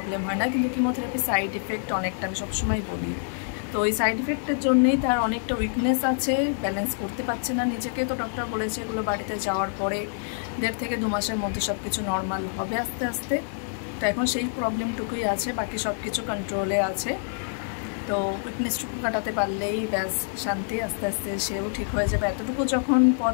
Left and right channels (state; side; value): silent; right; digital silence